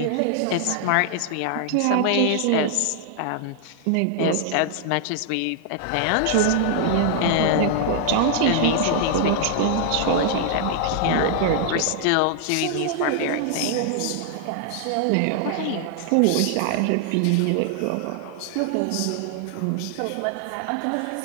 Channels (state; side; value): different; both; correlation 0.00